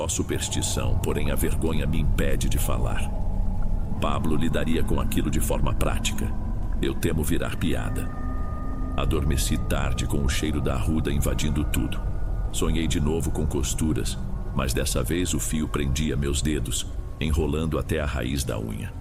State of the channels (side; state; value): both; identical; correlation 1.00